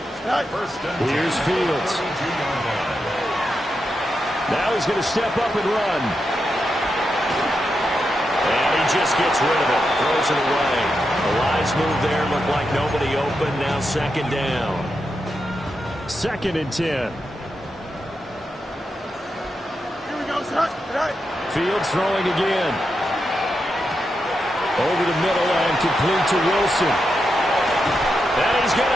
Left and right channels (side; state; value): both; normal; correlation 0.86